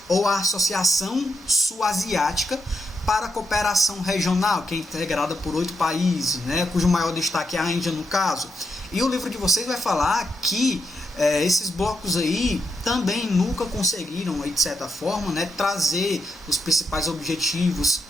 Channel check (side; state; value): both; normal; correlation 0.83